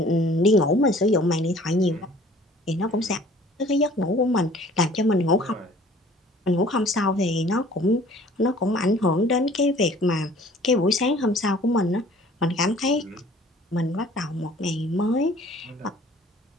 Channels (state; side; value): normal; both; correlation 0.52